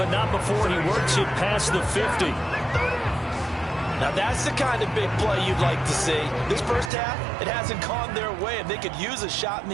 not before he works it past the 50. Now that's the kind of big play you'd like to see. This first half, it hasn't gone their way, and they could use a shot in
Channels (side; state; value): left; drops out; at 6.9 s